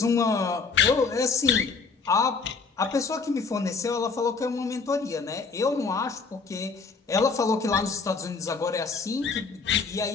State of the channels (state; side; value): quieter; right; 4.8 dB